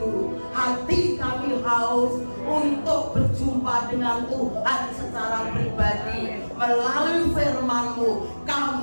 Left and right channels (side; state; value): both; inverted; correlation -1.00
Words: hati kami haus untuk berjumpa dengan Tuhan secara pribadi. Melalui firman-Mu